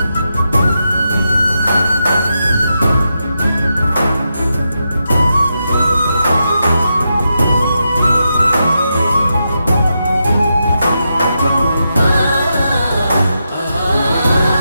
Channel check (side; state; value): both; inverted; correlation -0.86